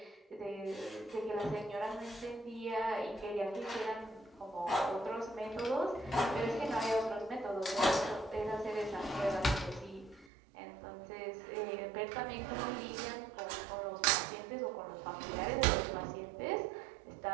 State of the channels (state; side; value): drops out; left; at 10.3 s